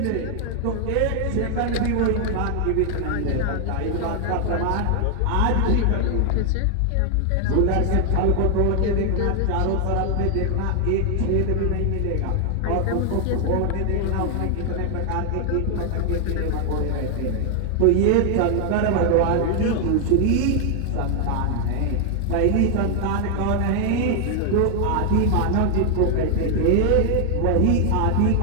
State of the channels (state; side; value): different; both; correlation 0.00